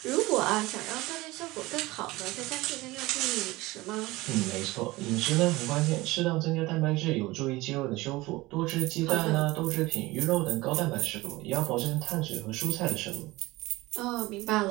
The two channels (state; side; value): quieter; left; 20.3 dB